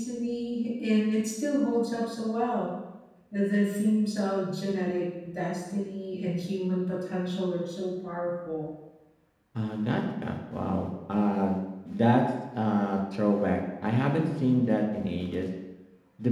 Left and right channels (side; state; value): both; identical; correlation 1.00